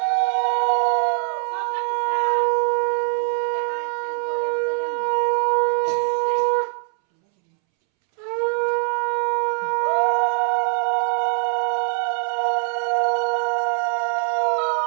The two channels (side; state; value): left; silent; 64 dB below the other